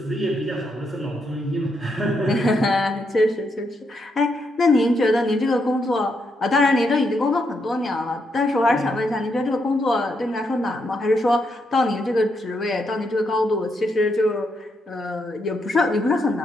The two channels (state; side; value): normal; both; correlation 0.80